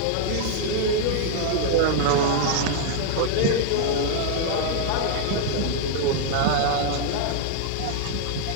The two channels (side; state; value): both; different; correlation 0.00